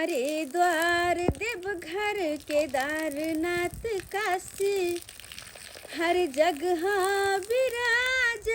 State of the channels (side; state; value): both; identical; correlation 1.00